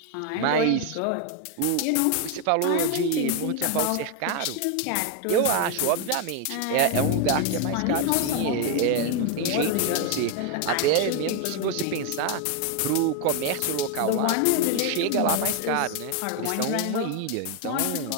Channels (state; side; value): different; both; correlation 0.01